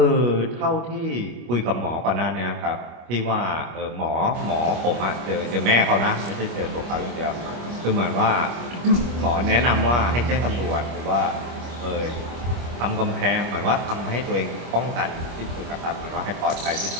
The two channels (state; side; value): late; left; 25 ms